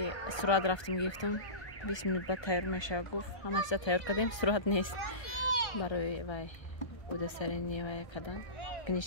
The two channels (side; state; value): right; late; 1.1 ms